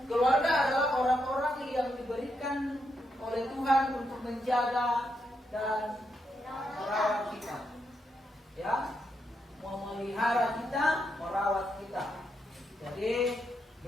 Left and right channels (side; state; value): both; normal; correlation 0.81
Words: Keluarga adalah orang-orang yang diberikan oleh Tuhan untuk menjaga dan merawat kita. Ya, memelihara kita, merawat kita. Jadi